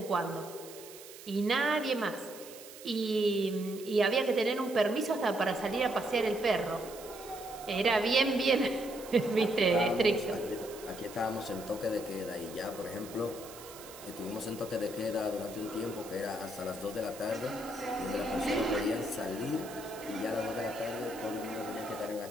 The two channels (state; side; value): noise; right; hiss, 16 dB below the sound